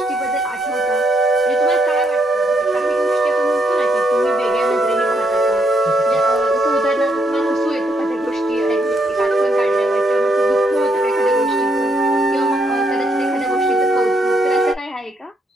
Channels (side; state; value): both; normal; correlation 0.75